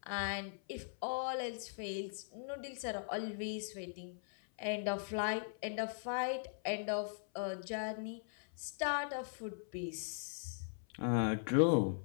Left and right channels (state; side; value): silent; right; 51 dB below the other